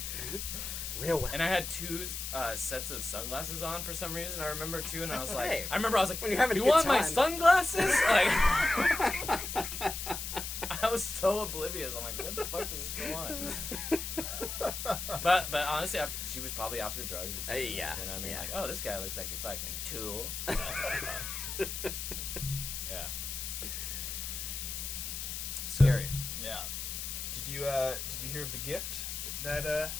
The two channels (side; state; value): left; noise; hiss, 5 dB below the sound